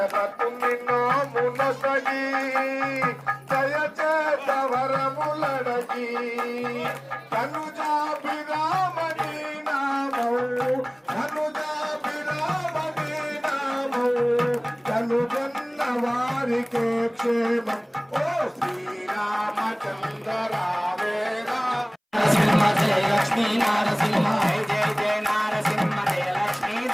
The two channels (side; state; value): both; identical; correlation 1.00